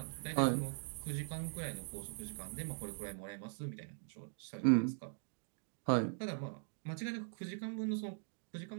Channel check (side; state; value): left; silent; digital silence